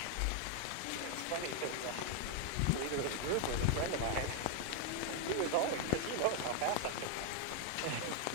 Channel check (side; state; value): both; different; correlation 0.00